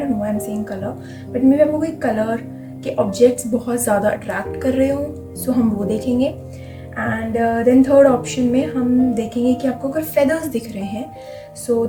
know I am saying colour, but may be आपको कोई कलर के ऑब्जेक्ट्स बहुत ज़्यादा अट्रैक्ट कर रहे हो, सो हम वो देखेंगे। एंड देन थर्ड ऑप्शन में हम देखेंगे कि आपको अगर फेदर्स दिख रहे हैं, so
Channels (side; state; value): both; identical; correlation 1.00